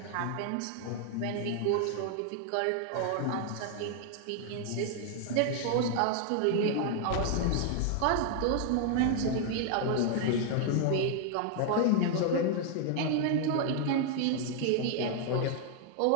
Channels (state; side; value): different; both; correlation 0.00